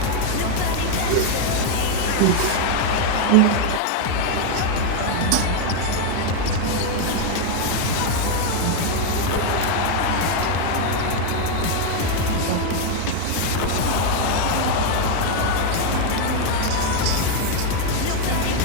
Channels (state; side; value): different; both; correlation 0.01